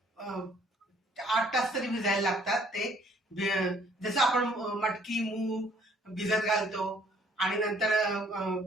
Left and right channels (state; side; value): normal; both; correlation 0.61